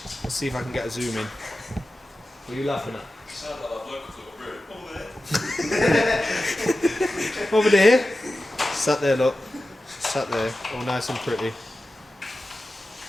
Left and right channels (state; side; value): normal; both; correlation 0.94